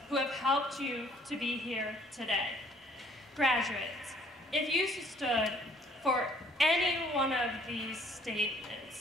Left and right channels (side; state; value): both; normal; correlation 0.60